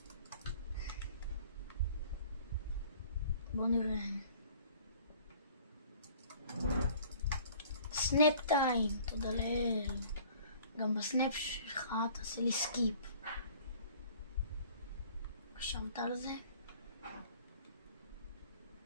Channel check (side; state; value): both; inverted; correlation -0.51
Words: בואו נראה. סנאפ טיים, תודה לאל. גם בסנאפ שלך תעשה לי סקיפ. חשבת על זה?